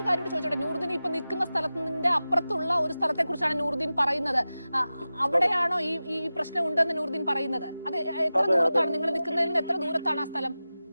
കാര്യം ചോദിച്ചോട്ടെ. നൂറുദ്ദീൻ ഇപ്പൊ നിൽക്കുന്ന സ്ഥലത്തിന്റെ അപ്പുറത്തുള്ള ഒരു സ്ഥലത്തെ കുറിച്ചാണ് നൂറുദ്ദീൻ പറയുന്നത്. അവിടെയാണോ ഈ പ്രശ്നം ഉണ്ടെന്ന് നൂറുദ്ദീൻ പറയുന്നത്? അത് എത്ര ദൂരത്താണ് നിങ്ങൾ നിൽക്കുന്നതിൽ നിന്ന് എത്ര ദൂരത്താണ് ആ സ്ഥലം?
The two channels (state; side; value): inverted; both; correlation -0.95